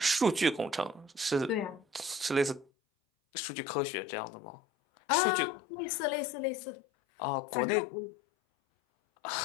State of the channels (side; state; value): right; drops out; at 2.7 s